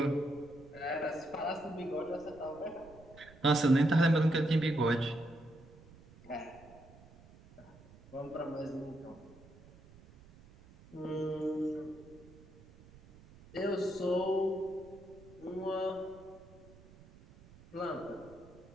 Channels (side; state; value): right; noise; rumble, 22 dB below the sound